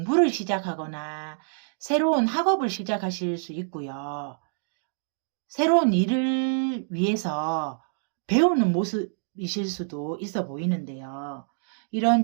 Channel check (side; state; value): left; silent; digital silence